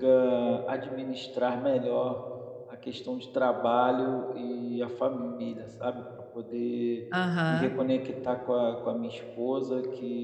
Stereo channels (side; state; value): both; identical; correlation 1.00